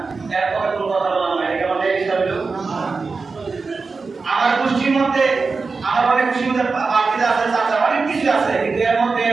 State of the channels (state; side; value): quieter; left; 4.4 dB